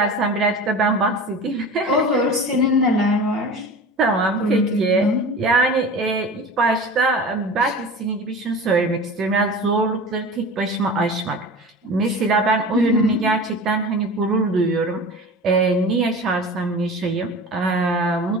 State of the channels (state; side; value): normal; both; correlation 0.35